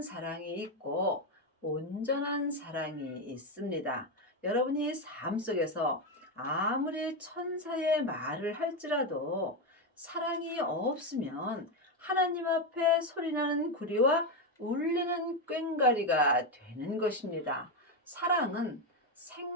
사랑이 있고 온전한 사랑이 있습니다. 여러분이 삶 속에서 아무리 천사의 말을 할지라도 사랑이 없으면 하나님 앞에 소리나는 구리와 울리는 꽹과리가 되는 것입니다. 사랑은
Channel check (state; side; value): normal; both; correlation 0.09